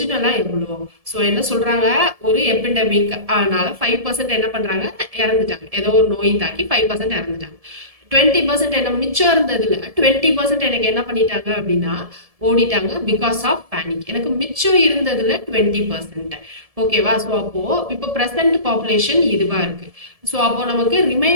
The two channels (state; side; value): late; left; 1.7 ms